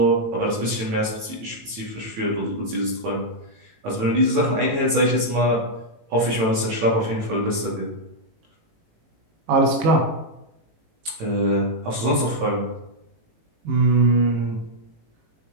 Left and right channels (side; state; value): left; late; 18 ms